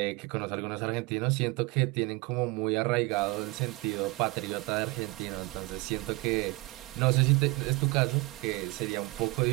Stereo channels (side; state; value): left; quieter; 23.7 dB